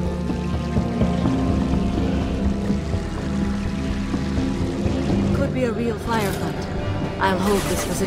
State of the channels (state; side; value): identical; both; correlation 1.00